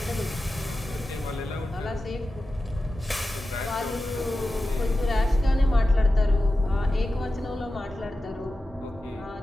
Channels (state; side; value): normal; both; correlation 0.93